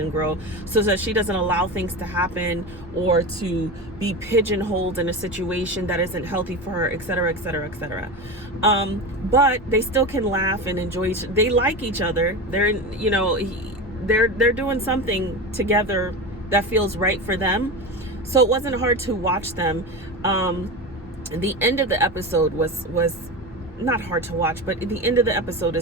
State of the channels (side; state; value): both; normal; correlation 0.24